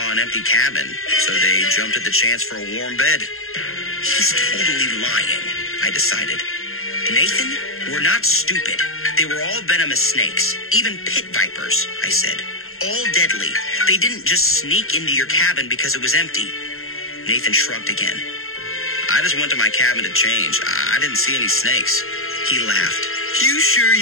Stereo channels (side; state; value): right; late; 0.61 ms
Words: an empty cabin, so they jumped at the chance for a warm bed." He's totally lying, I decided. "Nathan, we're not stupid. They were all venomous snakes, even pit vipers," I said. "All deadly. They didn't just sneak into your cabin because it was empty." Nathan shrugged again. "I just went to my cabin to change. I didn't see any snakes." He laughed. "You sure